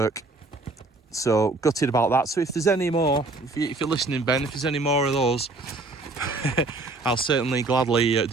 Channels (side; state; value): left; quieter; 3.3 dB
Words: so gutted about that. So if there's any more, if you're listening, Ben, if there's any more of those, I'll certainly gladly